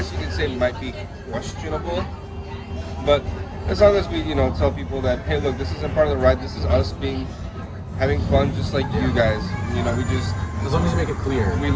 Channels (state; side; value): identical; both; correlation 1.00